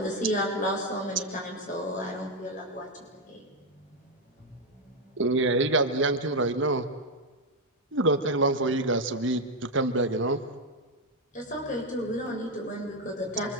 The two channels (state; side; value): normal; both; correlation 0.04